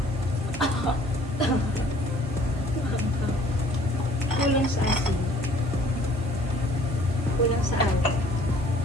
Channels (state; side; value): normal; both; correlation 0.56